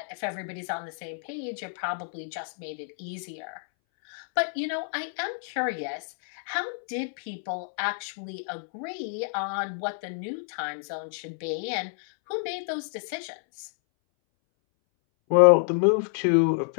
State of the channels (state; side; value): silent; right; 59 dB below the other